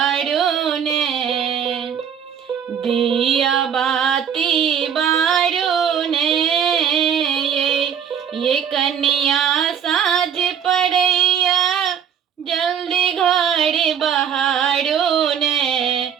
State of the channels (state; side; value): quieter; left; 8.3 dB